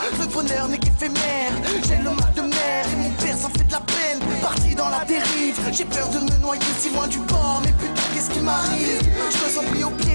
le bonheur n'est qu'éphémère? J'ai le mal de mer et mon père s'en fait de la peine. Parti dans la dérive, j'ai peur de me noyer si loin du bord. Mais putain, qu'est-ce qui m'arrive? Je me sens pris au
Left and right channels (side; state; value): both; inverted; correlation -1.00